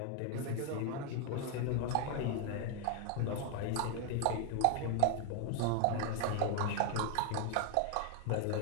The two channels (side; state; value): both; different; correlation 0.01